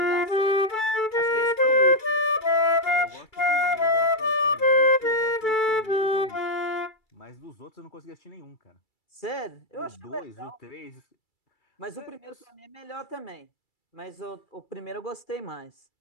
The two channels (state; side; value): late; right; 2.3 ms